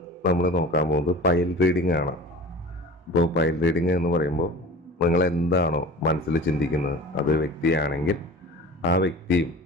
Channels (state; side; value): normal; both; correlation 0.38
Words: നമ്മൾ നോക്കാൻ പോകുന്നത് പൈൽ റീഡിംഗ് ആണ്. ഇപ്പോൾ പൈൽ റീഡിംഗ് എന്ന് പറയുമ്പോൾ നിങ്ങൾ എന്താണോ മനസ്സിൽ ചിന്തിക്കുന്നത് അതൊരു വ്യക്തിയാണെങ്കിൽ ആ വ്യക്തിയും